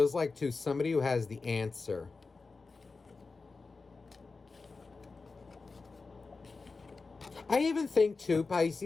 like, to somebody who has the answer. I even think too,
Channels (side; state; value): right; quieter; 4.1 dB